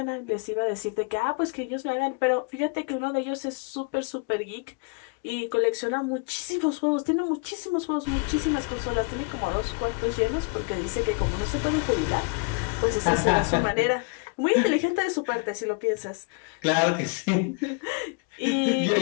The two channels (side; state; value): right; quieter; 33.8 dB